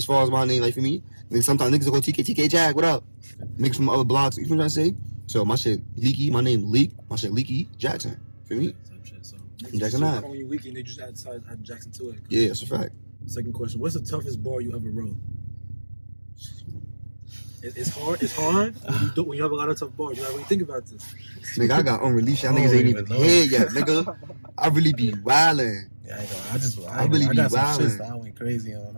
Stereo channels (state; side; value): inverted; both; correlation -1.00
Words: far as my name, like for me, then sometimes niggas will go TK Jag, what up? Niggas from other blocks, you know what I'm trying to say? So my shit Leeky, my name Leek, my shit Leeky Jackson. For me? So Jackson Ave. When you Leeky, they just add Jackson to it. Yeah, that's a fact. Second question, what's the toughest bar you ever wrote? It's hard when you have a lot of tough bars. You gotta really think about this. Nigga, I got unreleased. Y'all niggas ain't even here yet, nigga. I really be wildin'. Yeah, I really be wildin'. I went crazy on.